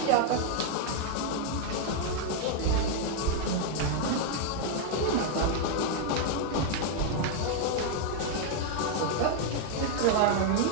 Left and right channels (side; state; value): both; different; correlation 0.00